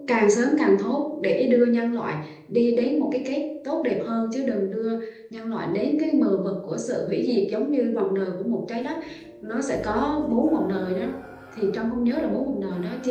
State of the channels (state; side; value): identical; both; correlation 1.00